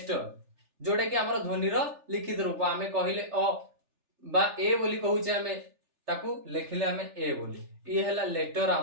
जोडे कि हमर ध्वनि रो लिखित रूप। आमे कहिले अ बा ए बोली कहूचे, आमे ताकू लेखिले आमे ए बोली। ये हला लेटर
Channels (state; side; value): late; left; 3.4 ms